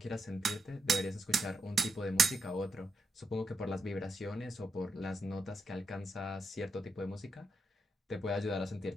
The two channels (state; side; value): normal; both; correlation 0.81